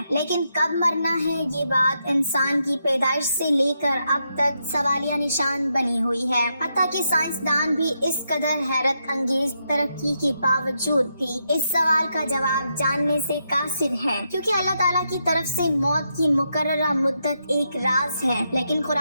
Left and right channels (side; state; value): both; inverted; correlation -0.82